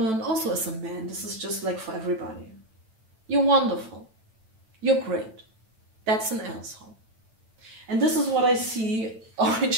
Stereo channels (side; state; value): left; late; 9.1 ms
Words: also as a man. This is just like for everybody. You're wonderful. You're great. That's an asshole. And this is what I see